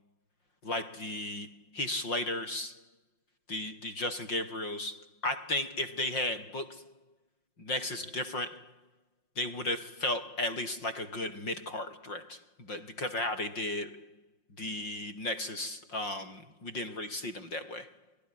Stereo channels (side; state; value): right; late; 5.6 ms